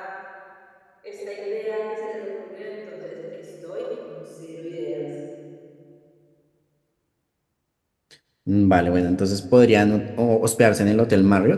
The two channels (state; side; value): identical; both; correlation 1.00